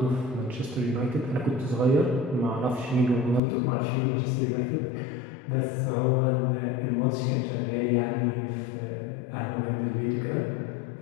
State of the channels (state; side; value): drops out; right; at 3.4 s